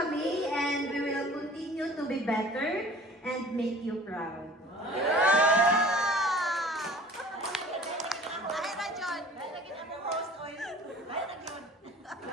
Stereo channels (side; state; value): both; normal; correlation 0.46